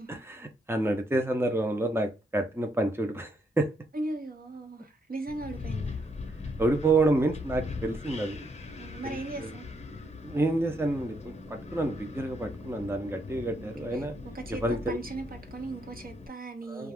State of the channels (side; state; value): both; normal; correlation 0.76